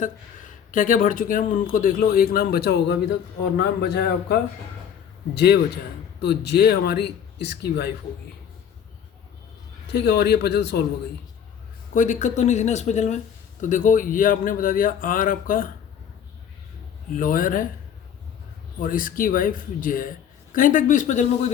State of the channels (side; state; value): right; quieter; 8.5 dB